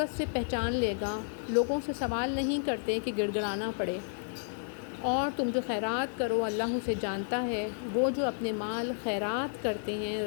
سے پہچان لے گا۔ لوگوں سے سوال نہیں کرتے کہ گڑ گڑانا پڑے۔ اور تم جو خیرات کرو اللہ اسے جانتا ہے۔ وہ جو اپنے مال خیرات کرتے ہیں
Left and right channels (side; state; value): right; silent; digital silence